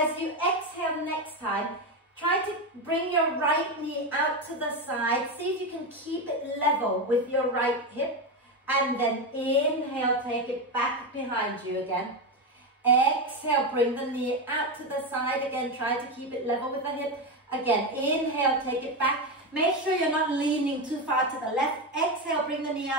you exhale next time, try to bring your right knee out to the side. See if you can keep it level with your right hip. And then inhale, take it back behind you again. Exhale, bring the knee out to the side again. Try to keep it level with the hip. Again, inhale, take it back. Make sure you're not leaning too far to the left. Exhale, bring the knee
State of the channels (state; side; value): normal; both; correlation 0.13